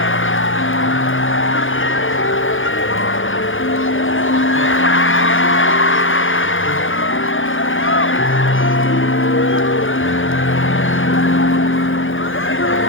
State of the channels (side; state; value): right; late; 0.58 ms